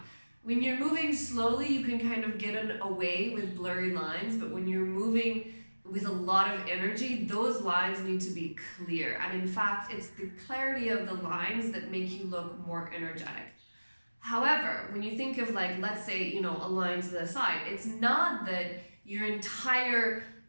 When you're moving slowly, you can kind of get away with blurry lines, but when you're moving with a lot of energy, those lines need to be clear. And in fact, it's the clarity of the lines that make you look more energetic. However, when you think of let's say, a line to the side, it's not that your entire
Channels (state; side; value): inverted; both; correlation -1.00